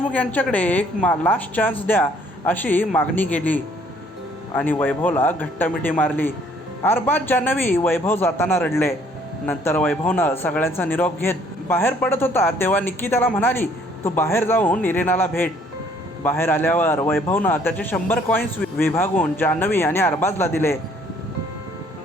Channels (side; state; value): both; normal; correlation 0.62